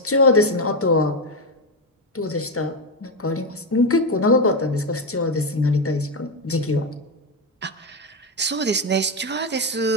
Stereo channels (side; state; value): both; normal; correlation 0.09